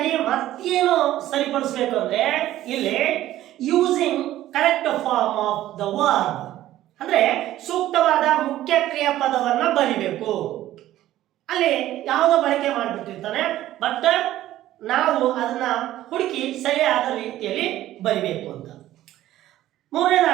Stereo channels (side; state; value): left; quieter; 14.0 dB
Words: ಮತ್ತೇನು ಸರಿಪಡಿಸಬೇಕು ಅಂದ್ರೆ, ಇಲ್ಲಿ using correct form of the verb ಅಂದ್ರೆ ಸೂಕ್ತವಾದ ಮುಖ್ಯ ಕ್ರಿಯಾಪದವನ್ನ ಬರಿಬೇಕು. ಅಲ್ಲಿ ಯಾವುದೋ ಬಳಕೆ ಮಾಡಿಬಿಟ್ಟಿರ್ತಾನೆ, ಬಟ್ ನಾವು ಅದನ್ನ ಹುಡುಕಿ ಸರಿಯಾದ ರೀತಿಯಲ್ಲಿ ಬರಿಬೇಕು ಅಂತ.